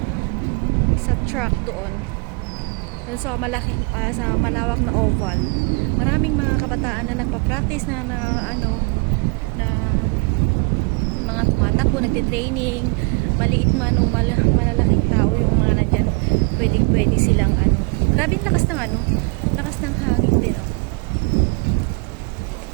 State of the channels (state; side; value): quieter; left; 32.0 dB